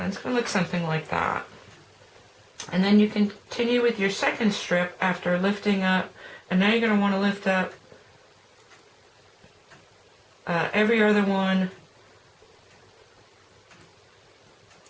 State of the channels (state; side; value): identical; both; correlation 1.00